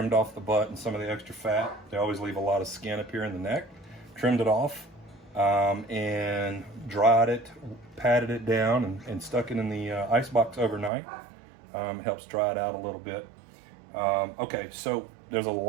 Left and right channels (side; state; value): left; drops out; at 10.9 s